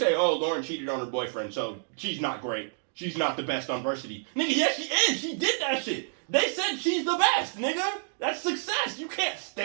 oh, Lauren cheated on her boyfriend, so she's not great. She's not the best on varsity. Nigga, yes she is. She did that shit. They said she's the best, nigga. That's success. You can't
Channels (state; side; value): silent; left; digital silence